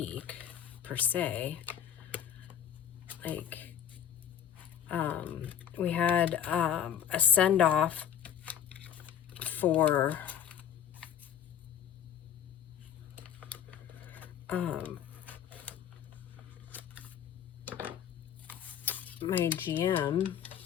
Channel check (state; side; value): quieter; right; 9.5 dB